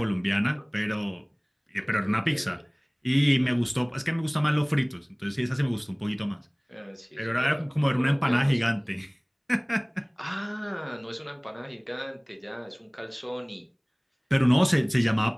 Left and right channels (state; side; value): identical; both; correlation 1.00